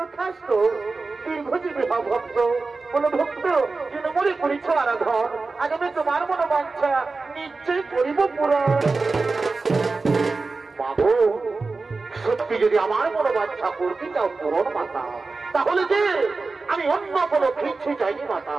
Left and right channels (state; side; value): quieter; left; 3.9 dB